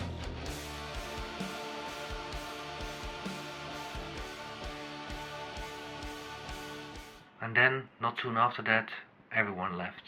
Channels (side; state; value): both; identical; correlation 1.00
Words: And then, not soon after that, everyone left,